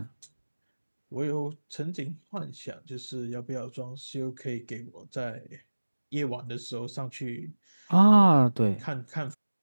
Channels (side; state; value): both; inverted; correlation -1.00